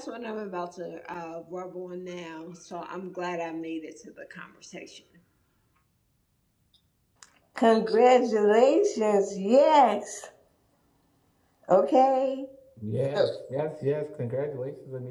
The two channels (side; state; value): both; identical; correlation 1.00